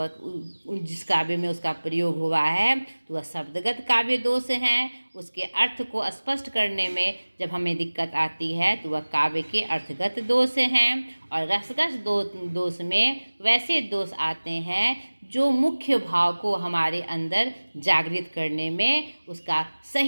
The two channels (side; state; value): both; inverted; correlation -1.00